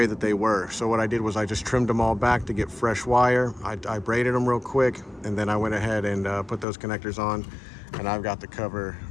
that they were. So what I did was I just trimmed them all back to get fresh wire. I braided them real quick, and then I went ahead and put those connectors on, and I've got the cover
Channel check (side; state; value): right; drops out; at 6.7 s